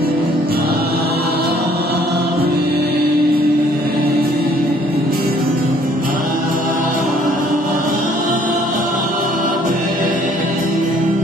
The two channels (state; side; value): normal; both; correlation 0.60